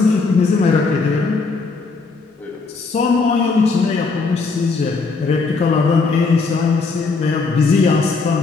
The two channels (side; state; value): right; quieter; 4.2 dB